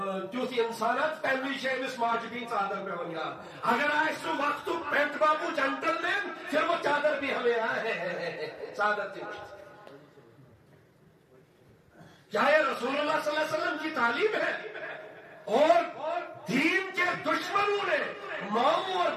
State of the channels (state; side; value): identical; both; correlation 1.00